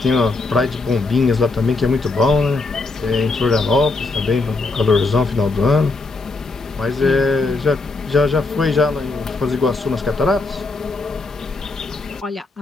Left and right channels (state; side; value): quieter; right; 3.5 dB